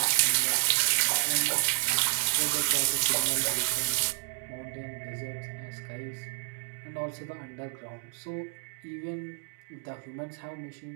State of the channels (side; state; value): left; silent; digital silence